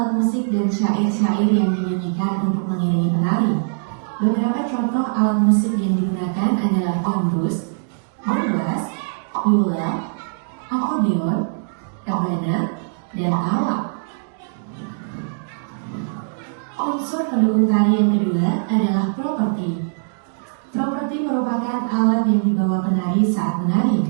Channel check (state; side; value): silent; left; digital silence